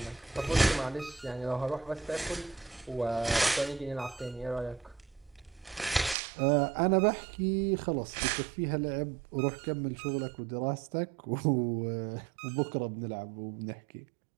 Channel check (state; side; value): drops out; left; at 6.2 s